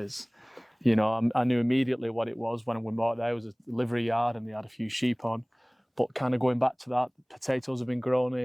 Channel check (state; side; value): identical; both; correlation 1.00